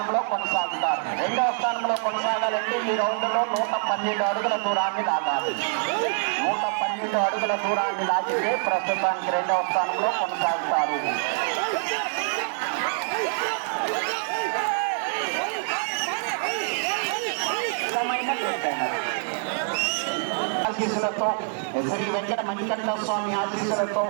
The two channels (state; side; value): silent; left; 58 dB below the other